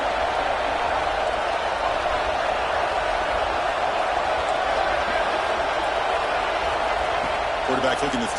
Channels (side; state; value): both; identical; correlation 1.00